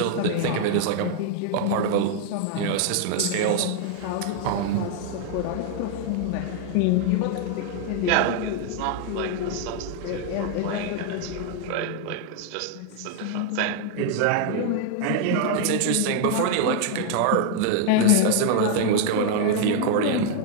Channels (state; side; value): different; both; correlation 0.00